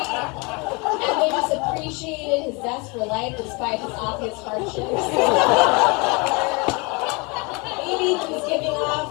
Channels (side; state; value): right; quieter; 29.0 dB